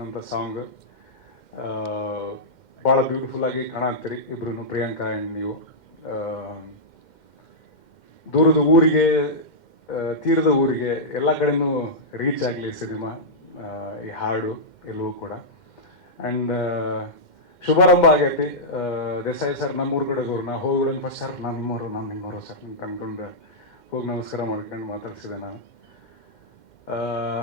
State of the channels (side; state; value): right; late; 2.1 ms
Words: ಸಾಂಗ್. ಭಾಳ ಬ್ಯೂಟಿಫುಲ್ಲಾಗಿ ಕಾಣತ್ತೀರಿ ಇಬ್ರು, ಪ್ರಿಯಾಂಕಾ ಆ್ಯಂಡ್ ನೀವು. ದೂರದ ಊರಿಗೆ ತೀರದ ಊರಿಗೆ ಎಲ್ಲ ಕಡೆನೂ ರೀಚ್ ಆಗಲಿ ಸಿನಿಮಾ, ಈ ಹಾಡು ಎಲ್ಲವೂ ಕೂಡ. ಆ್ಯಂಡ್ ಶುಭಾರಂಭ ಆಗೈತಿ. ದೇಸಾಯಿ ಸರ್ ನಮ್ಮೂರು ಕಡೆದವ್ರು, ನಾ ಹೋಗಿ ಫಸ್ಟ್ ಸರ್ ನಾನು ನಿಮ್ಮವರು ಸರ್ ಅಂತ ಅಂದ್ಕೊಂಡು ಹೋಗಿ ನಮಸ್ಕಾರ ಮಾಡ್ಕೊಂಡು ಮಾತಾಡ್ಸಿದೆ ನಾನು.